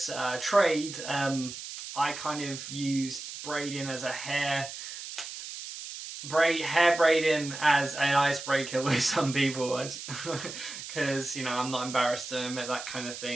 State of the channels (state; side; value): noise; right; hiss, 10 dB below the sound